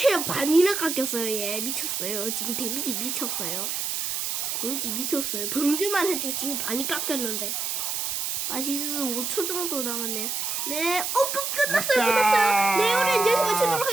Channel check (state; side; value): noise; right; hiss, 1 dB below the sound